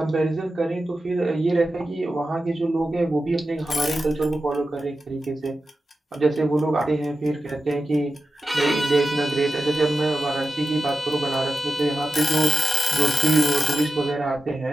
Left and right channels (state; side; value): normal; both; correlation 0.92